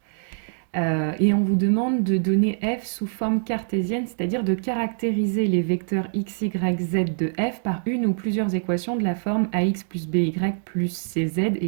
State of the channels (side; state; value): left; silent; digital silence